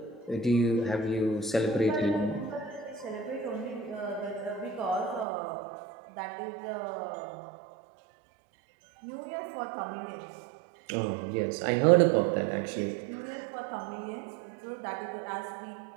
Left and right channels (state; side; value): drops out; left; at 5.2 s